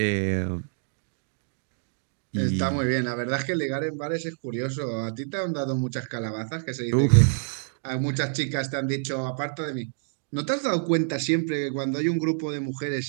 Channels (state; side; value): silent; left; digital silence